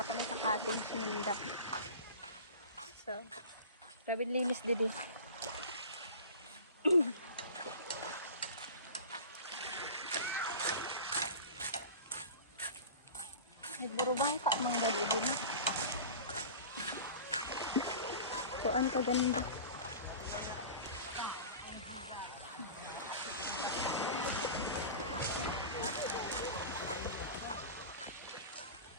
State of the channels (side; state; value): both; inverted; correlation -0.35